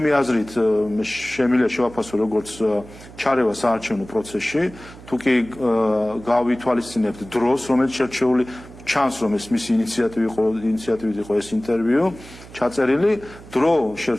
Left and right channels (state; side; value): noise; right; hum, 18 dB below the sound